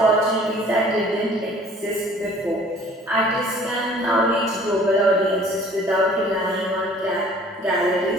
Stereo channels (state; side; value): normal; both; correlation 0.52